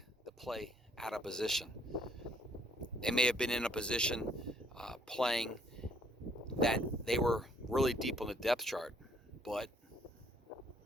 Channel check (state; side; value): normal; both; correlation 0.65